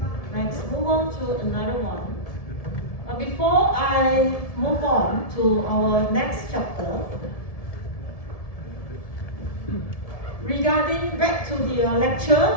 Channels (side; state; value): right; late; 1.7 ms